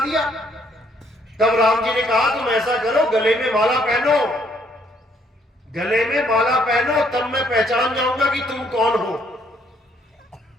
दिया। तब राम जी ने कहा तुम ऐसा करो, गले में माला पहनो, गले में माला पहनो, तब मैं पहचान जाऊंगा कि तुम कौन हो।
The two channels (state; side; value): normal; both; correlation 0.67